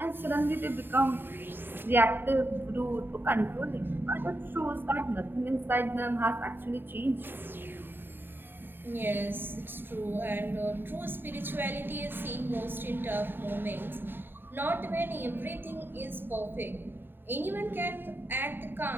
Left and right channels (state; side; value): late; left; 0.097 ms